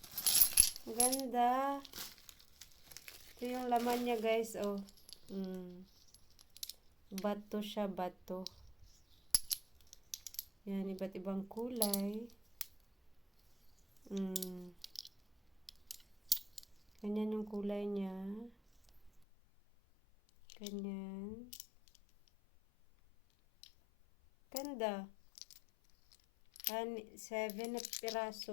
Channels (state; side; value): drops out; right; at 19.2 s